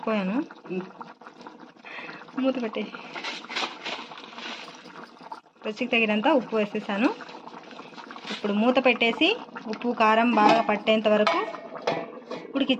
మూత పెట్టేసి రుచికి తగినంత ఉప్పు వేసేసాను. ఇప్పుడు మూత పెట్టేసి ఉప్పు కారం బాగా పట్టేంత వరకు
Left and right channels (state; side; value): identical; both; correlation 1.00